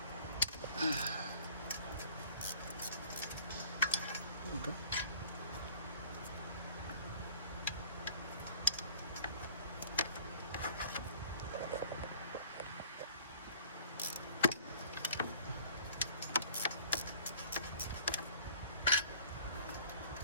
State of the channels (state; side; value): inverted; both; correlation -0.49